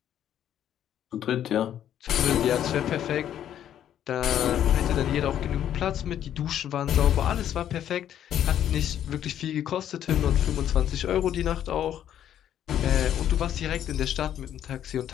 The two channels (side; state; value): right; quieter; 10.5 dB